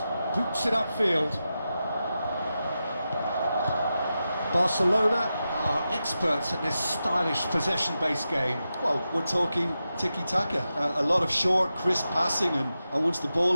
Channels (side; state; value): both; inverted; correlation -0.91